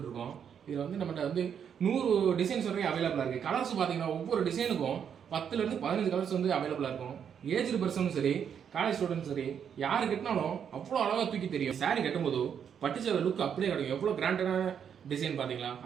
இதில் வந்து நம்மகிட்ட வந்து 100 டிசைன்ஸ் வரைக்கும் அவைலபிளாக இருக்குது. கலர்ஸ் பார்த்தீங்கன்னா ஒவ்வொரு டிசைனுக்கும் 10லேருந்து 15 கலர்ஸ் வந்து அவைலபிளாக இருக்கும். ஏஜ்டு பர்சனும் சரி, காலேஜ் ஸ்டூடெண்ட்ஸ் சரி, யார் கட்டினாலும் அவ்வளோ அழகாக தூக்கி தெரியும். சாரி கட்டும்போது பட்டுச்சேர லுக் அப்படியே கிடைக்கும். எவ்வளோ கிராண்டடான டிசைன் பார்த்தீங்களா,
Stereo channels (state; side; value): quieter; left; 8.0 dB